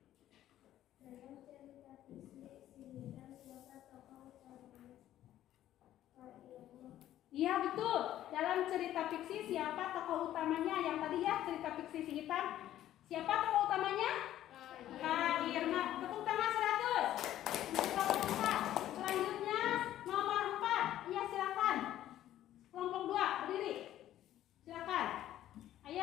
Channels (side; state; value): right; quieter; 12.7 dB